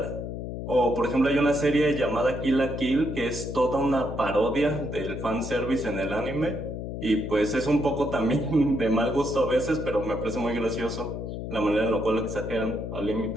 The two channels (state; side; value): noise; left; hum, 6 dB below the sound